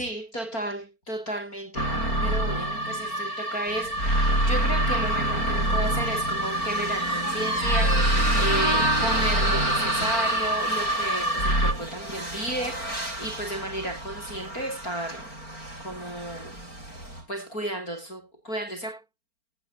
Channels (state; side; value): late; right; 4.4 ms